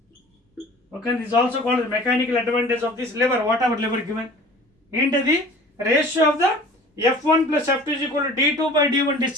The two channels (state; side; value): normal; both; correlation 0.44